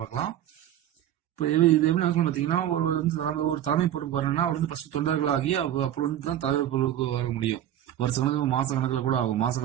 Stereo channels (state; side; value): quieter; left; 11.6 dB